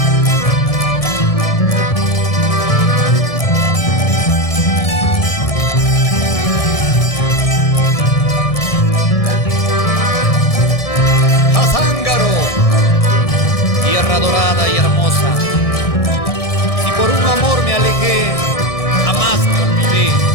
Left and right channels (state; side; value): late; right; 1.6 ms